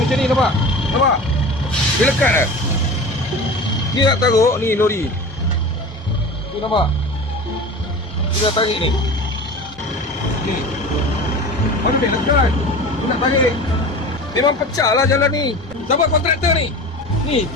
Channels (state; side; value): normal; both; correlation 0.34